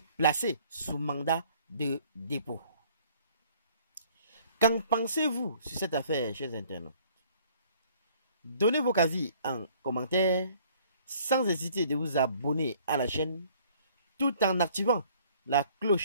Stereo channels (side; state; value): both; inverted; correlation -0.58